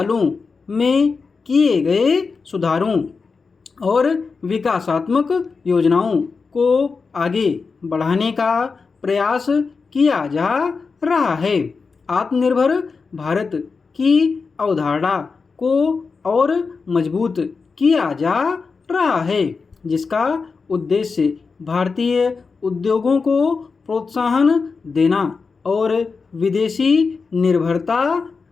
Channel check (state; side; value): quieter; right; 4.8 dB